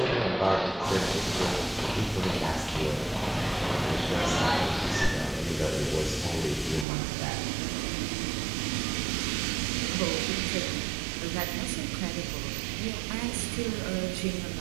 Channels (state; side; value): drops out; left; at 6.9 s